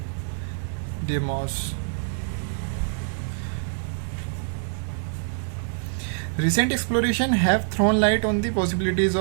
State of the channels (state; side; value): silent; left; digital silence